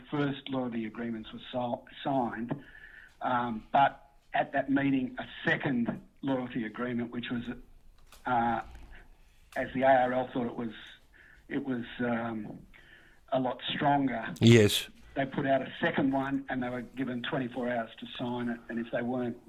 first loyalty agreements were signed. But at that meeting, a second loyalty agreement, which was, as the ARL thought it was a lot stronger. Yes. They put out a second one, and they were given 24 hours to sign it. And if they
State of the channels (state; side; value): identical; both; correlation 1.00